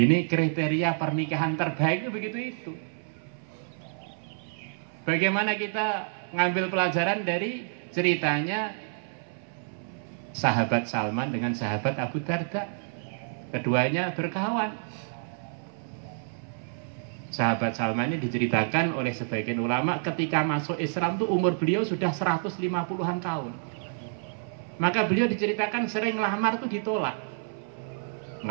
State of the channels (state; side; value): silent; left; 56 dB below the other